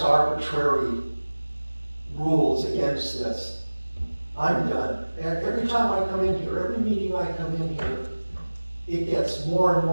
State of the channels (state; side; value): inverted; both; correlation -1.00